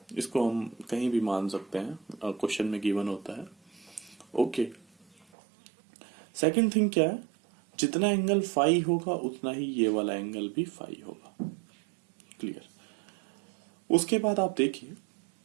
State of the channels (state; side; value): drops out; left; at 5.2 s